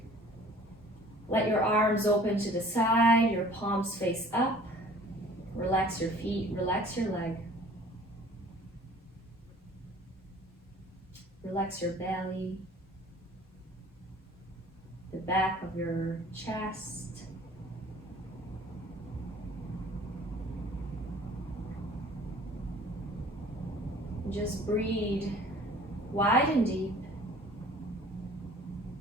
Let your arms open to the side, your palms face up. Relax your feet, relax your leg. Relax your belly, the back of your chest. Just breathe wide and deep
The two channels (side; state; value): both; normal; correlation 0.50